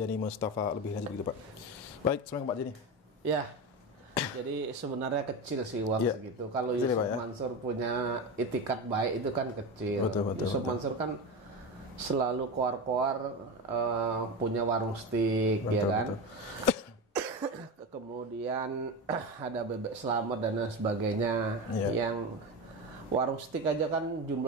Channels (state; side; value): normal; both; correlation 0.21